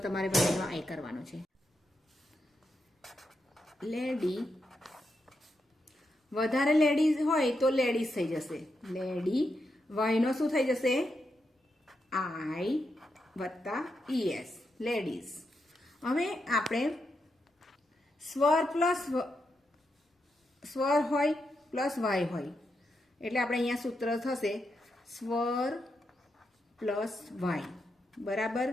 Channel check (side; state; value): both; normal; correlation 0.84